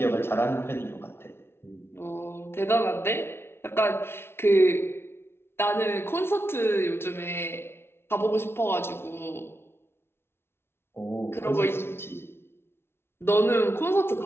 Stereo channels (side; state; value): right; late; 0.12 ms